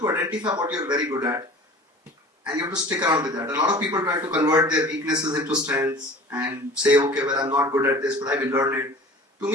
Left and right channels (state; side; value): normal; both; correlation 0.42